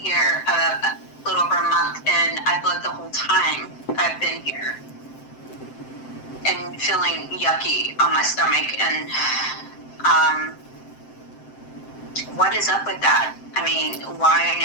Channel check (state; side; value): late; right; 7.7 ms